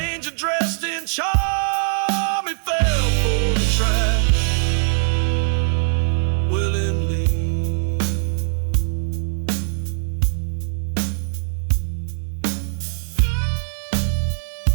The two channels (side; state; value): left; silent; digital silence